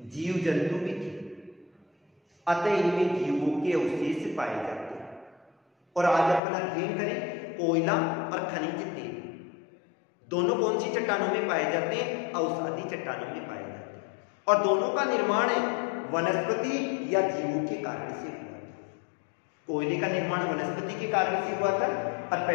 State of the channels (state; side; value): drops out; right; at 6.4 s